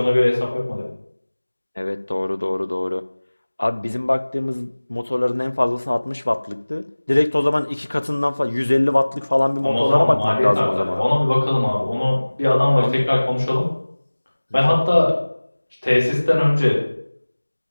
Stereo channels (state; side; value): inverted; both; correlation -1.00